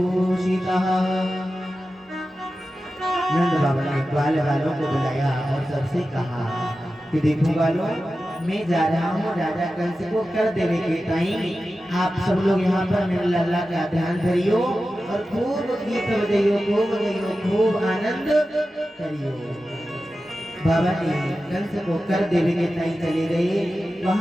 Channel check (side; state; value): both; normal; correlation 0.93